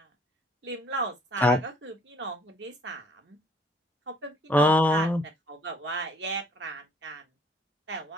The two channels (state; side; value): normal; both; correlation 0.59